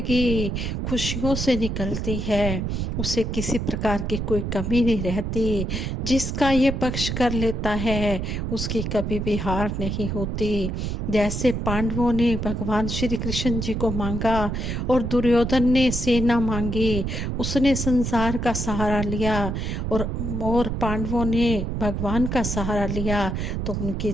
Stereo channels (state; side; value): noise; right; rumble, 2 dB below the sound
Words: खुशियों से निकलती है, उसे किसी प्रकार की कोई कमी नहीं रहती। जिसका ये पक्ष कर लेता है, उसकी कभी भी हार नहीं होती। जैसे पांडवों ने भगवान श्री कृष्ण जी को मांगा और दुर्योधन ने सेना मांगी, उसने संसार का सहारा लिया और पांडवों ने भगवान का सहारा लिया तो उनकी